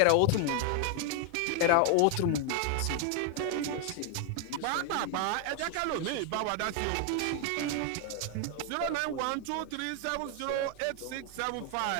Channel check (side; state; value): both; different; correlation 0.01